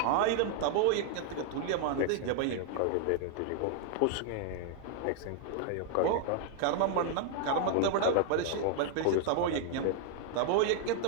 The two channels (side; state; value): both; different; correlation 0.00